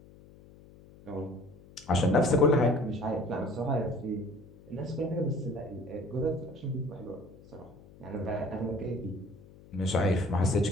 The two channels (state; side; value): noise; left; hum, 22 dB below the sound